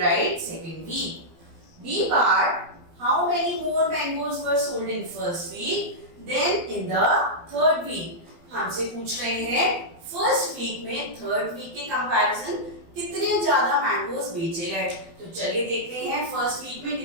write second week. B part. How many more mangoes were sold in first week than in the third week? हमसे पूछ रहे हैं फर्स्ट वीक में थर्ड वीक के कंपैरिजन कितने ज्यादा मैंगोस बेचे गए. तो चलिए देखते हैं फर्स्ट वीक में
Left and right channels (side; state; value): left; late; 12 ms